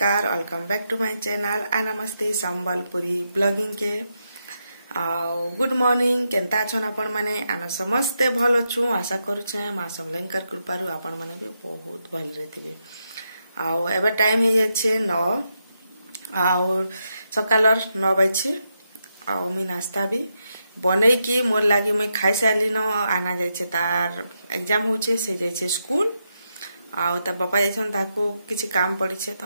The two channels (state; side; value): inverted; both; correlation -0.84